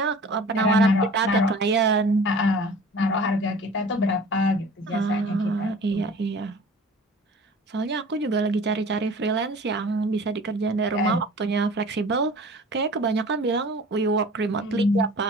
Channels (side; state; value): both; normal; correlation 0.43